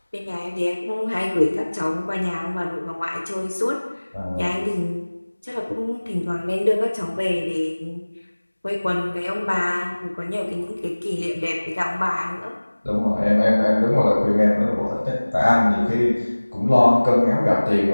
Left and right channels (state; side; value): inverted; both; correlation -1.00